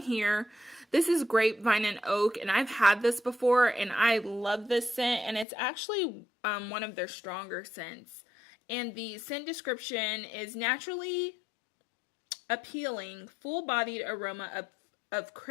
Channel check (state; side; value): drops out; right; at 5.5 s